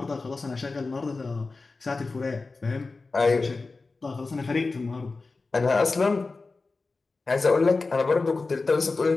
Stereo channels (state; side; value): quieter; right; 3.8 dB